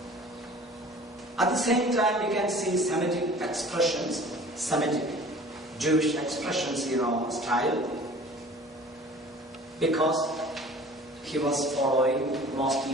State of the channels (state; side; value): normal; both; correlation 0.46